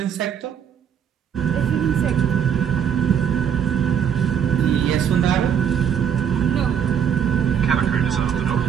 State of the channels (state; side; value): quieter; left; 8.3 dB